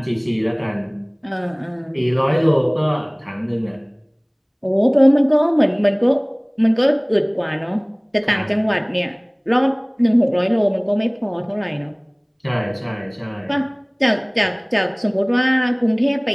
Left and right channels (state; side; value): identical; both; correlation 1.00